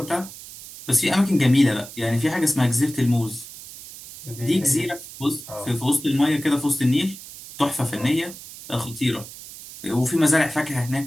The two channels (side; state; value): right; noise; hiss, 15 dB below the sound